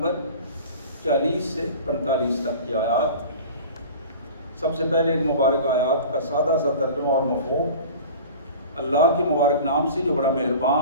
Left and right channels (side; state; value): both; inverted; correlation -0.39